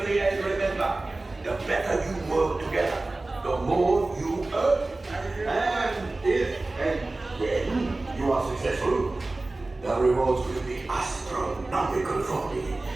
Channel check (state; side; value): quieter; left; 3.0 dB